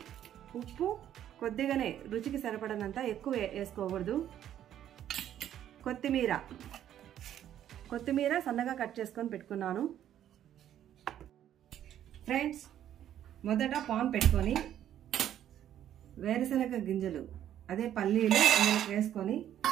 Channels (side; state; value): left; quieter; 10.9 dB